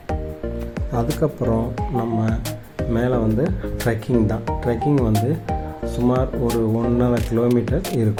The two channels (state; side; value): identical; both; correlation 1.00